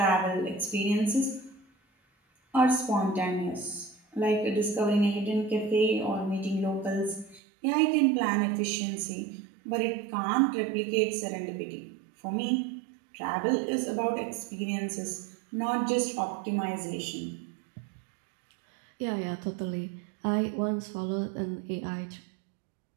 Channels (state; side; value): drops out; left; at 7.4 s